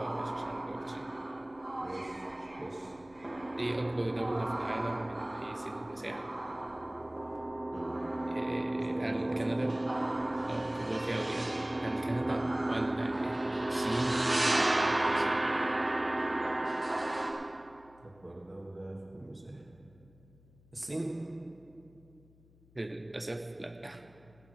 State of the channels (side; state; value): left; noise; hum, 27 dB below the sound